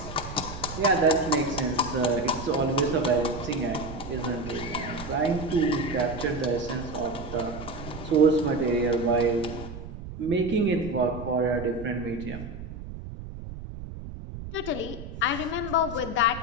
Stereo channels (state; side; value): noise; right; rumble, 11 dB below the sound